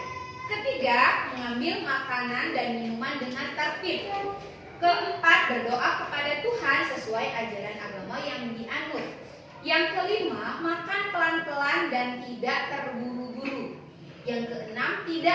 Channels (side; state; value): both; identical; correlation 1.00